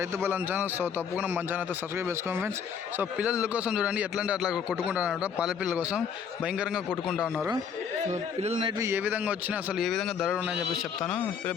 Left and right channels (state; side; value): quieter; right; 7.0 dB